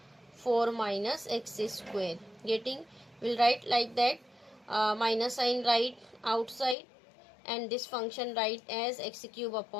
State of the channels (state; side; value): drops out; right; at 6.8 s